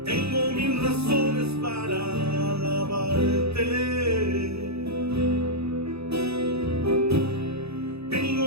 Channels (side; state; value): left; late; 0.79 ms